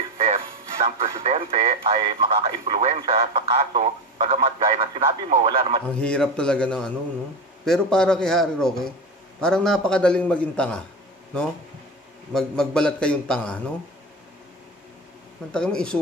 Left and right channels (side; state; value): both; normal; correlation 0.22